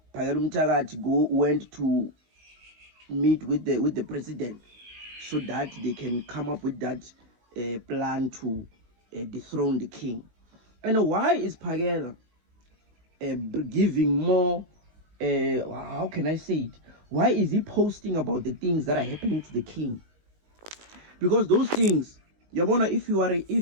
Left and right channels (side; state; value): left; late; 19 ms